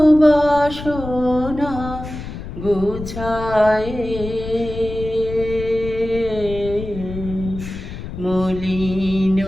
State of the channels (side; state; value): left; noise; rumble, 10 dB below the sound